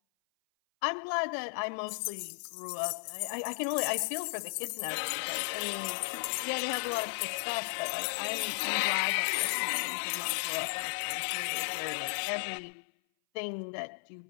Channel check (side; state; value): right; silent; 55 dB below the other